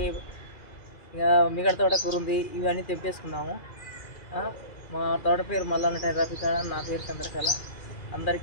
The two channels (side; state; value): right; late; 2.4 ms